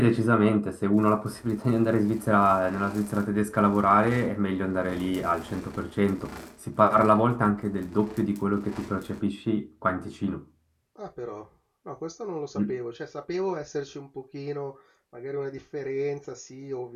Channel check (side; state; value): both; identical; correlation 1.00